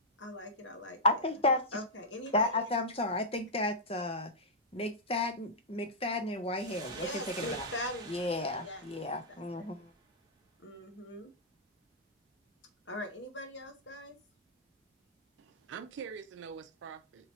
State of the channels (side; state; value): both; normal; correlation -0.09